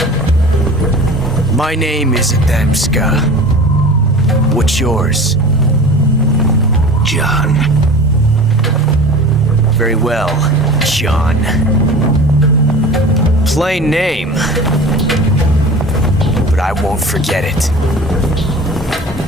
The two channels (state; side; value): normal; both; correlation 0.38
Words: My name is Adamska. What's yours? John. Very well, John. Plain name. But I won't forget it.